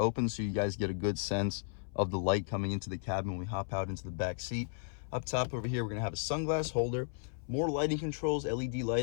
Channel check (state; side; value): silent; right; 55 dB below the other